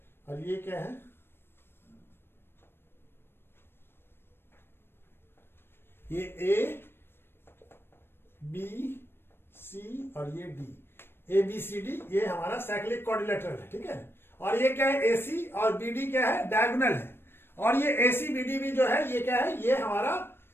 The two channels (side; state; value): right; late; 0.11 ms